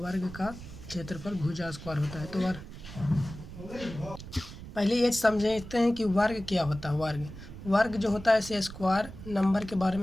का क्षेत्रफल भुजा स्क्वायर होता है। तो पहले ये समझते हैं कि वर्ग क्या होता है। वर्ग जो होता है ऐसे स्क्वायर नंबर के बारे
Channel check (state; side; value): noise; right; rumble, 13 dB below the sound